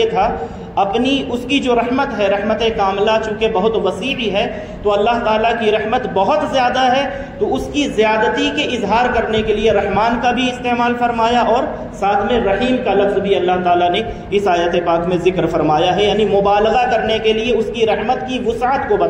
تھا، اپنی اس کی جو رحمت ہے، رحمت کاملہ چونکہ بہت وسیع ہے، تو اللہ تعالیٰ کی رحمت بہت زیادہ ہے، تو اس کی زیادتی کے اظہار کرنے کے لیے رحمان کا بھی استعمال فرمایا اور ساتھ میں رحیم کا لفظ بھی اللہ تعالیٰ نے اس آیت پاک میں ذکر فرمایا ہے، یعنی مبالغہ کرنے کے لیے، اس کی رحمت کی وسعت کو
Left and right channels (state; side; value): identical; both; correlation 1.00